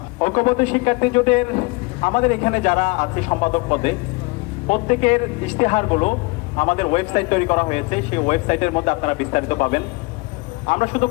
ঐক্যবদ্ধ শিক্ষার্থী জোটের আমাদের এখানে যারা আছে সম্পাদক পদে, প্রত্যেকের ইশতেহারগুলো আমাদের ওয়েবসাইট তৈরি করা হয়েছে। সেই ওয়েবসাইটের মধ্যে আপনারা বিস্তারিত পাবেন। আমরা শুধু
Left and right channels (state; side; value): quieter; right; 25.9 dB